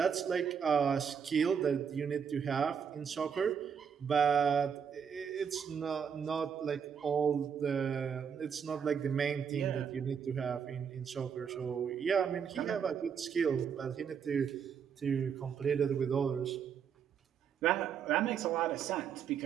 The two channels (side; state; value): left; quieter; 7.2 dB